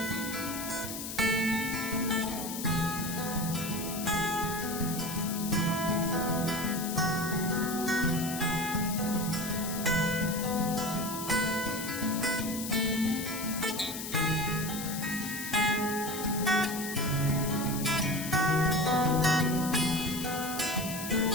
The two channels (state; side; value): noise; left; hiss, 7 dB below the sound